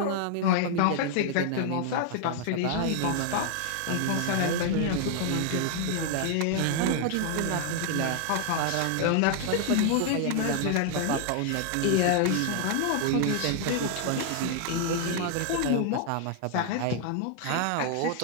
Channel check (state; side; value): different; both; correlation 0.00